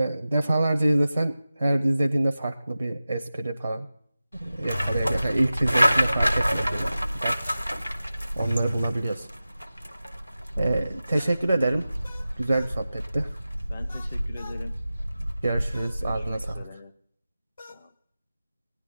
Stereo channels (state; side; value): inverted; both; correlation -0.95